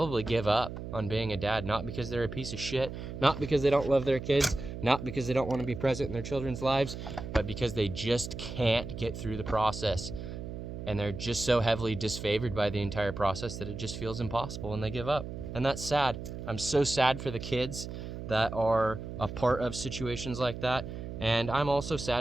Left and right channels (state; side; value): noise; right; hum, 8 dB below the sound